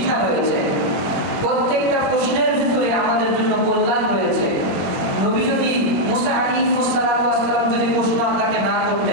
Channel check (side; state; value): left; late; 21 ms